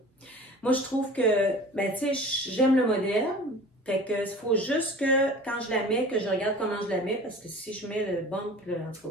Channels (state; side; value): normal; both; correlation 0.41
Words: Moi, je trouve que, ben, tu sais, j'aime le modèle. Fait que, il faut juste que, quand je la mets, que je regarde comment je la mets, parce que si je mets le bump, là, en tout cas.